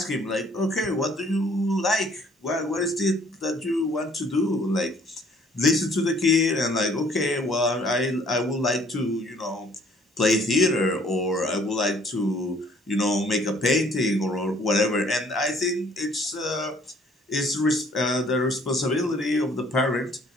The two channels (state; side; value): normal; both; correlation 0.59